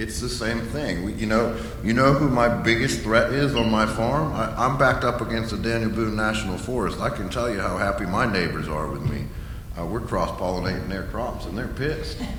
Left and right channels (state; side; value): identical; both; correlation 1.00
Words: the same thing. You know who my biggest threat is on my farm? I'm backed up against the Daniel Boone National Forest. I can tell you how happy my neighbors are with me. We're cross-pollinating their crops, and they're pissed.